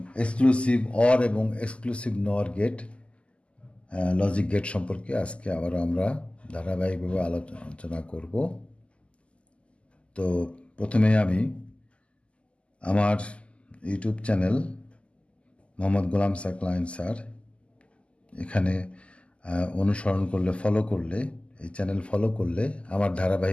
এক্সক্লুসিভ অর এবং এক্সক্লুসিভ নর গেট লজিক গেট সম্পর্কে আজকে আবার আমরা ধারাবাহিকভাবে আলোচনা করব। তো প্রথমে আমি আমার YouTube channel Mohammad Golam Saqlain sir এখানে অনুসরণ করলে ফলো করলে এই চ্যানেল ফলো করলে আমার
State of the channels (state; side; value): late; right; 0.056 ms